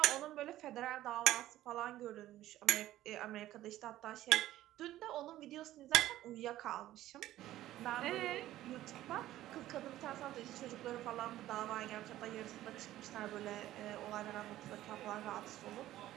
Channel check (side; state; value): left; quieter; 14.4 dB